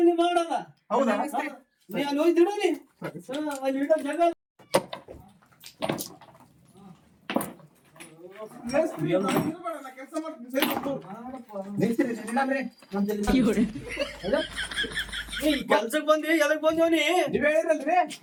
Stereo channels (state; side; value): identical; both; correlation 1.00